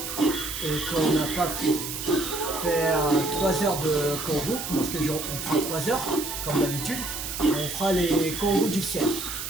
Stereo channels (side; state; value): right; noise; hiss, 6 dB below the sound